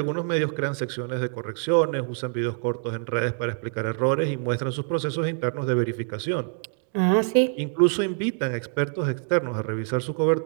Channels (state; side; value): silent; left; 61 dB below the other